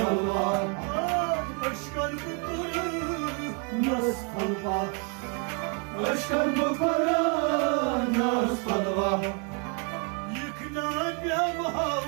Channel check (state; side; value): quieter; left; 37.0 dB